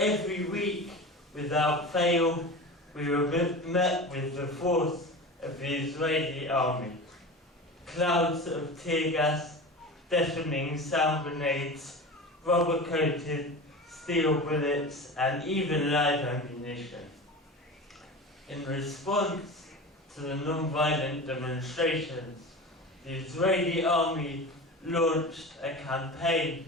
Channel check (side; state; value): both; normal; correlation 0.31